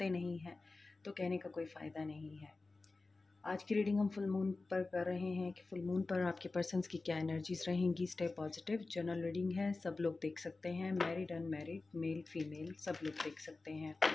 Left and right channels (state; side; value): quieter; right; 3.5 dB